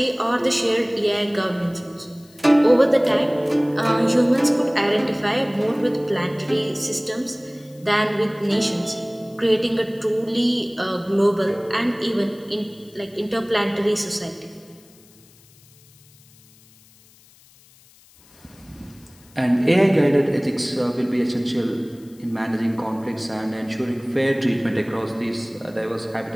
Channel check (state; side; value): noise; left; hiss, 28 dB below the sound